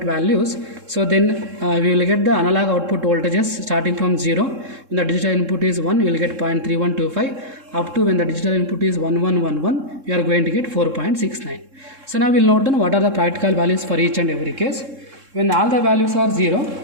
values, so then we will get the analog output voltages starting from 0. When the digital input is 1, we will get 0.3125, up to when the digital input is 1111, you are going to get 4.69. So now we will note down what are the practical values for each and every case. When all the values are 0,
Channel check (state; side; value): late; left; 3.7 ms